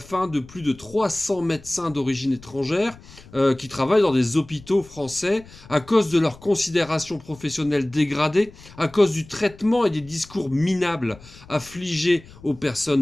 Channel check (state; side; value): noise; left; rumble, 21 dB below the sound